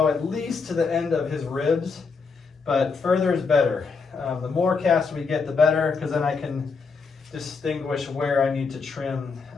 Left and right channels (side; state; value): right; quieter; 4.9 dB